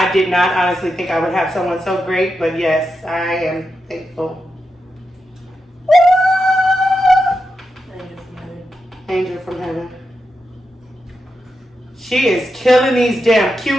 did not honestly think I would have someone so great, but yes, I am thankful. Angel from heaven. She is killing these damn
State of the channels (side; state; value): both; normal; correlation 0.87